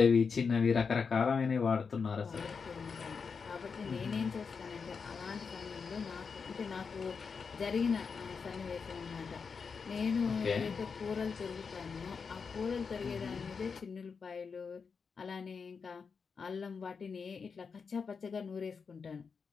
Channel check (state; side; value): quieter; right; 5.5 dB